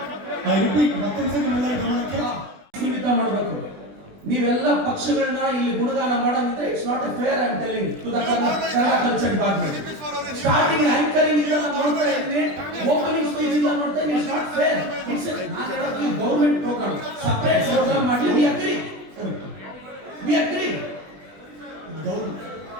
ಐ ರಿಪೀಟ್, ಮತ್ತೊಂದ್ಸರಿ ನಿಮ್ಮೆಲ್ಲರ ಗಮನಕ್ಕೆ ಸೀಮಿತ ಮಾಡಬೇಕು. ನೀವೆಲ್ಲ ಪಕ್ಷಗಳನ್ನ ಇಲ್ಲಿ ಗುಣಗಾನ ಮಾಡೋದಿದ್ರೆ it's not a fair. I am telling to the Kannada culture department. Starting anchoring ಇಂದ ನಾನು ನೋಡ್ತಾ ಇದ್ದೀನಿ, ಓಪನಿಂಗ್ ಸ್ಪೀಚ್ ಇಂದ ನೋಡ್ತಾ ಇದ್ದೀನಿ. It's not fair. It's government program, separate program ಮಾಡಿ. We agree, we agree.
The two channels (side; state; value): left; late; 20 ms